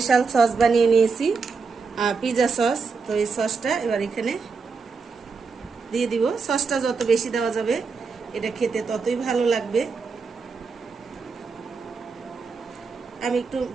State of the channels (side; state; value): left; quieter; 4.9 dB